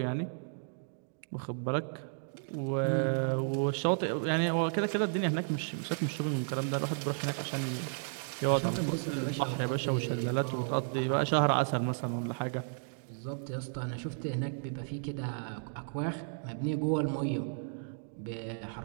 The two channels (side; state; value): left; silent; digital silence